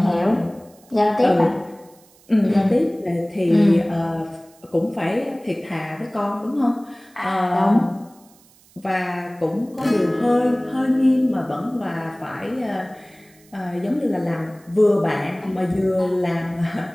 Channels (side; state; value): right; noise; hiss, 29 dB below the sound